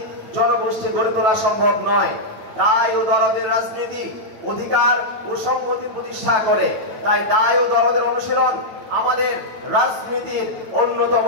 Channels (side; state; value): left; late; 9.4 ms